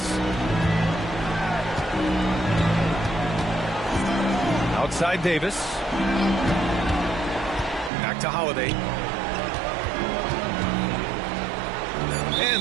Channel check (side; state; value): left; drops out; at 7.9 s